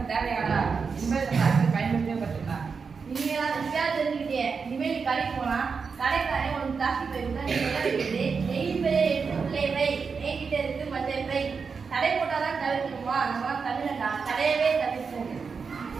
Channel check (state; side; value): quieter; left; 5.4 dB